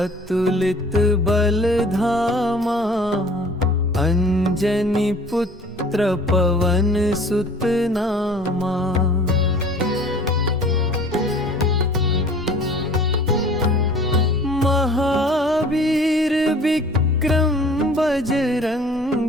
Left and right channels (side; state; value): both; normal; correlation 0.48